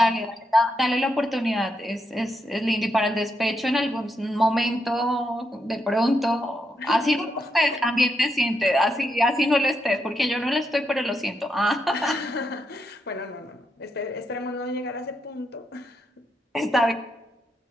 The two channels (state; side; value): normal; both; correlation 0.81